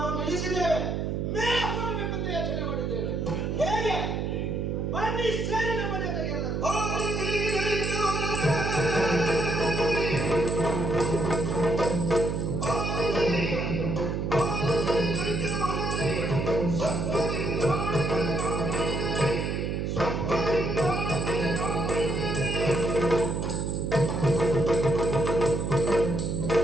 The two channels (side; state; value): right; noise; hum, 1 dB below the sound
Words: ನಾವು ನಿಲ್ಲಿಸಿದ್ದೇವೆ, ಮೇಲೆ ಹೋಗಬೇಕು ಅಂತ ಯೋಚನೆ ಮಾಡಿದ್ದೇವೆ. ಹೇಗೆ? ಬನ್ನಿ ಸೇರಿ ನಮ್ಮ ಜೊತೆಗೆ ಎಲ್ಲರೂ.